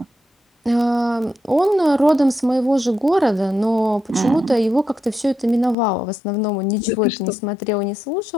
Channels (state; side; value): drops out; right; at 5.8 s